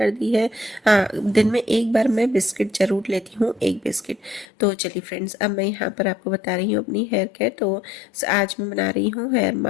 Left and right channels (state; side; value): drops out; right; at 4.5 s